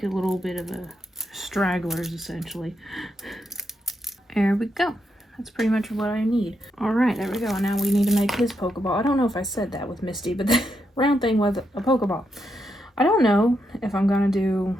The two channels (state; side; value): normal; both; correlation 0.82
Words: a little bit of a stragglers essentially. There we go. That's pretty much what I need. Alright, there we go. And now we need to make his Pokeball. I don't know if I said that with Misty, but the round thing was a Pokeball. I don't know if I'm gonna do